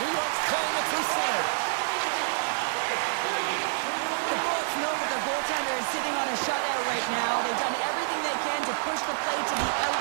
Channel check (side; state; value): left; silent; digital silence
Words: York's playing it through center. The Bolts know that their goaltender is sitting on a shutout right now. They've done everything they can to push the play to the